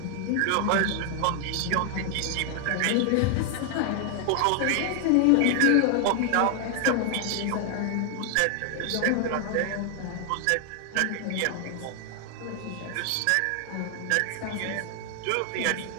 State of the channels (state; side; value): different; both; correlation 0.00